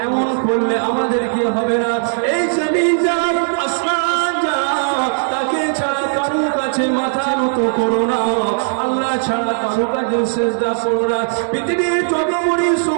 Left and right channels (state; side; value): silent; left; 68 dB below the other